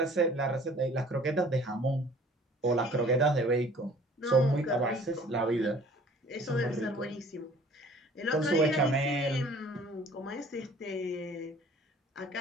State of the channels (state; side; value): normal; both; correlation 0.52